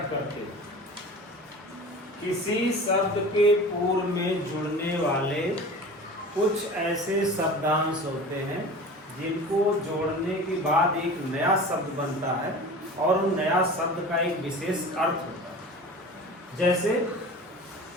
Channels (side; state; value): both; normal; correlation 0.37